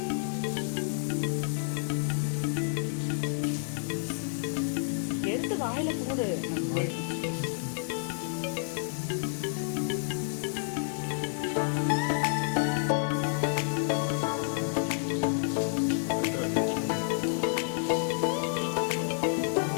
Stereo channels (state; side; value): silent; right; digital silence